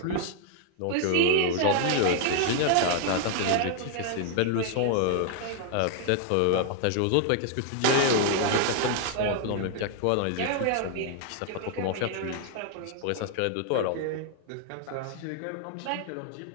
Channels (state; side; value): different; both; correlation 0.00